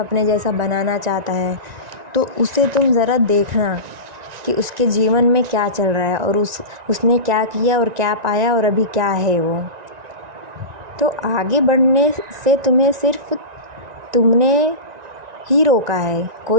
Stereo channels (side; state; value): left; late; 1.9 ms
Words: जैसा बनाना चाहता है, तो उसे तुम ज़रा देखना कि उसके जीवन में क्या चल रहा है और उसने क्या किया और क्या पाया और अभी क्या है वो। तो आगे बढ़ने से तुम्हें सिर्फ तुमने ही रोका है,